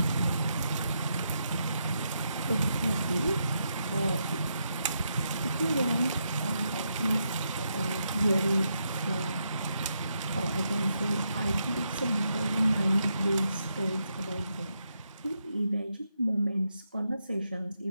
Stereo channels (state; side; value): inverted; both; correlation -0.81